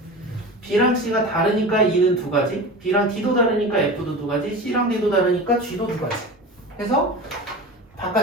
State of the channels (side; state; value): both; normal; correlation 0.31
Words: B랑 C가 다르니까 E는 두 가지, B랑 D도 다르니까 F도 두 가지, C랑 D도 다르니까 G도 두 가지 해서